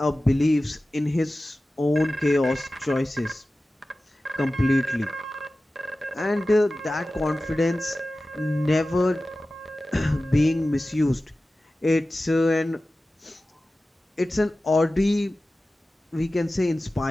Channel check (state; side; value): normal; both; correlation 0.96